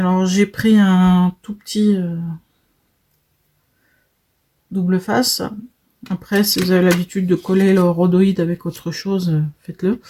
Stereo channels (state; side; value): identical; both; correlation 1.00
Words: j'ai pris un tout petit double face. Après, si vous avez l'habitude de coller le rhodoïde avec autre chose, faites-le.